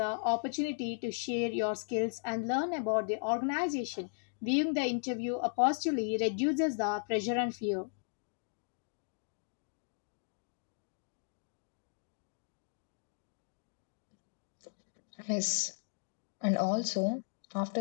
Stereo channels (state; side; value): silent; right; digital silence